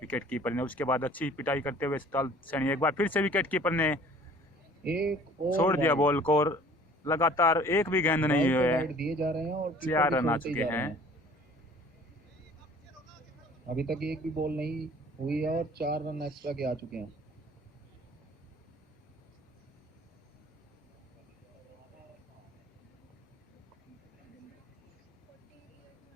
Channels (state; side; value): normal; both; correlation 0.51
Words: कीपर ने, उसके बाद अच्छी पिटाई करते हुए सतपाल सैनी। एक बार फिर से विकेट कीपर ने छोड़ दिया बॉल को, और लगातार एक भी गेंद नहीं हुए, दिए जा रहे हैं और 4 रन आ चुके हैं। अभी तक एक भी बॉल नहीं हुई है और 4 रन एक्स्ट्रा के आ चुके हैं।